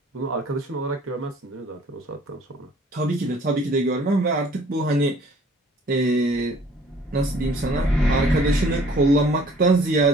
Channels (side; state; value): both; normal; correlation 0.55